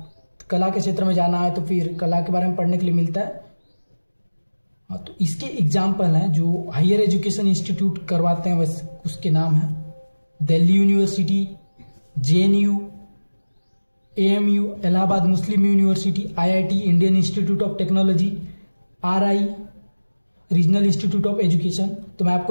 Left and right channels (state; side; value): inverted; both; correlation -1.00